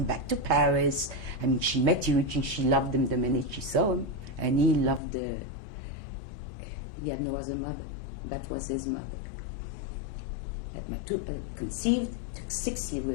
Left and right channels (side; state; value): right; drops out; at 5.0 s